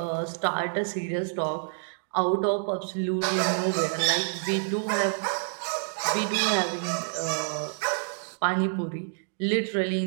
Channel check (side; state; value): left; silent; digital silence